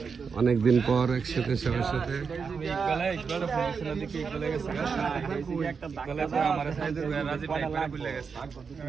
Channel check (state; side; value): quieter; left; 5.7 dB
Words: অনেকদিন পর একসাথে সবার সাথে